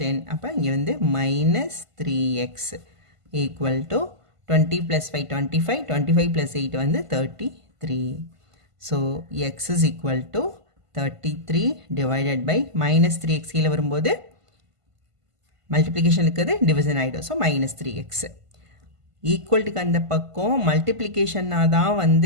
அப்போ இங்கே வந்து -3x equal to 20 + 5 25 25 + 8 வந்து 33. So x is equal to 33 divided by -3x கீழே வரும்போது மல்டிப்ளிகேஷன் இருக்குது, டிவிஷன் ஆகிடும். ஸோ -3x ஈக்குவல்ட்டுக்கு அந்த பக்கம் மல்டிப்ளிகேஷனாக தான்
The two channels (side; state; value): left; late; 1.5 ms